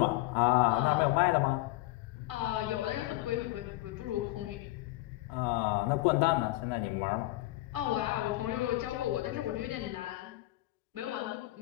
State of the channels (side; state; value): right; quieter; 18.2 dB